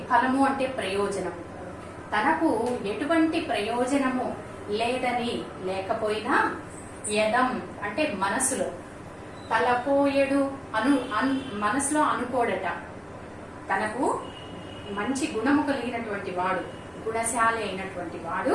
ఫలము అంటే ప్రయోజనం, తనకు ఎటువంటి ప్రయోజనము లేదని, లేకపోయినా, యదం అంటే మనసులో, తలపోయెడు మనసులో అనుకోడట. తనకు మంచి గుణము కలిగినటువంటి వాడు, గుణశాలి అయినటువంటి వాడు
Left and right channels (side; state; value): both; identical; correlation 1.00